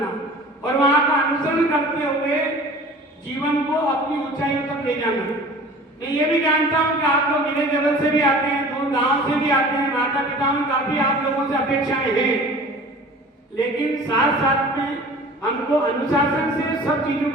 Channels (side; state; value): both; normal; correlation 0.43